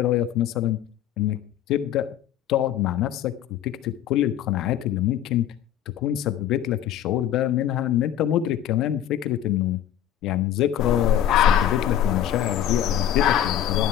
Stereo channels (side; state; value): right; quieter; 11.0 dB